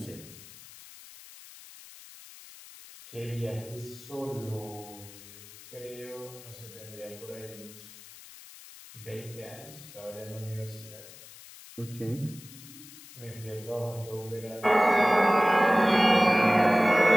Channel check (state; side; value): noise; left; hiss, 18 dB below the sound